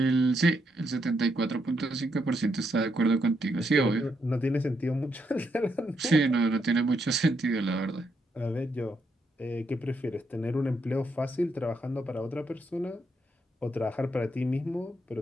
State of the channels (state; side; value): normal; both; correlation 0.79